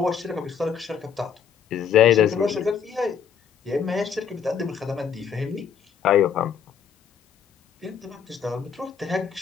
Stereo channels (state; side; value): quieter; right; 7.3 dB